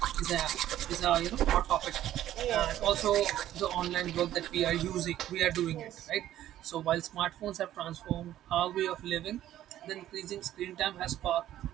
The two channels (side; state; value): left; quieter; 12.7 dB